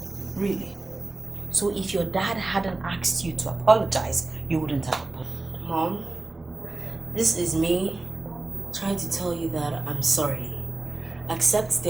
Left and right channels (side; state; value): left; quieter; 3.1 dB